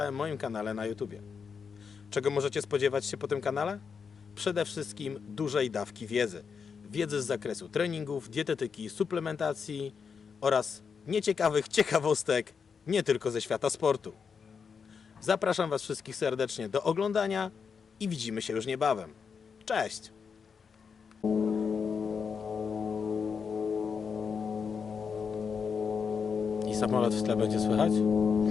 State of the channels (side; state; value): right; quieter; 6.0 dB